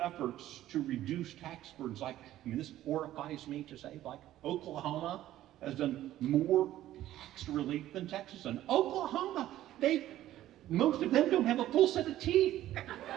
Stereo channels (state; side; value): quieter; left; 13.6 dB